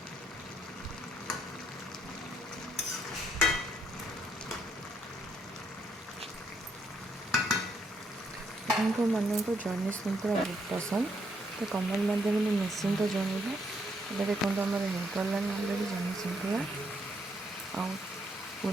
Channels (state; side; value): normal; both; correlation 0.74